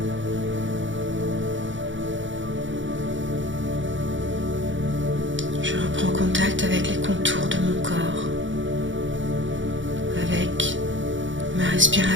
Je reprends contact avec les contours de mon corps, avec ma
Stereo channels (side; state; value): left; late; 0.55 ms